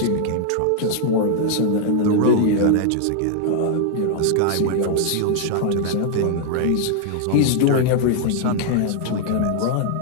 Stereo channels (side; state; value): both; different; correlation -0.01